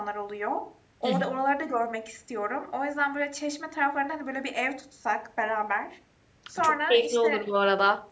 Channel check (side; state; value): both; identical; correlation 1.00